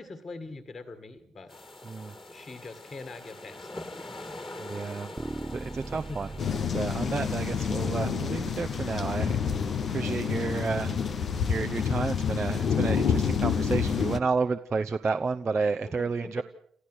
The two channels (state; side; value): normal; both; correlation 0.74